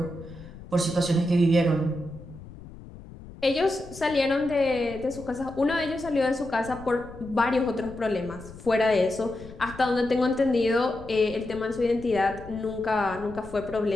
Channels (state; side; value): noise; left; rumble, 16 dB below the sound